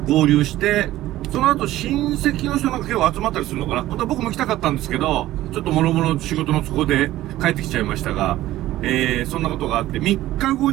合流して、その後親戚の人なんか結構集まったりするのかな。本当は僕も来たかったんですけど、ちょっと諸々仕事の都合で帰ってきちゃいましたが、そんなことがあって、3日後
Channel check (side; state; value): left; quieter; 15.2 dB